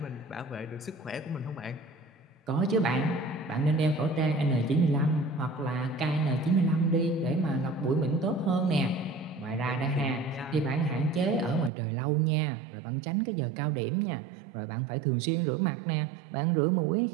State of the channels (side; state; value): left; drops out; at 11.7 s